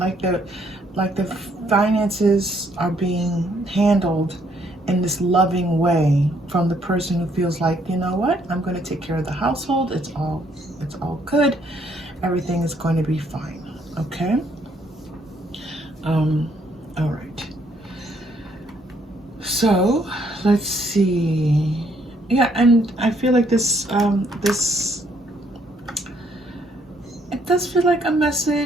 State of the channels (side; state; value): both; normal; correlation 0.69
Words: the finances are being handled in this loving way from the person who feels like, you know what, I'm going to take care of the household. It's all good. Everything is going to be fine. Okay. All right. So let's see. Yeah, and I feel like this it does feel like a